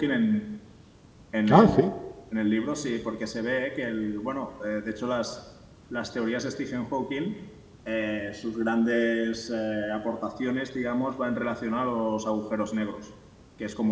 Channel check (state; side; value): identical; both; correlation 1.00